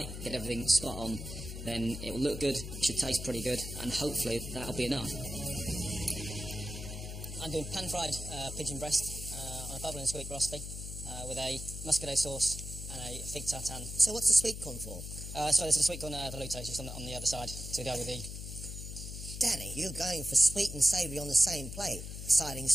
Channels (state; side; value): noise; left; hum, 8 dB below the sound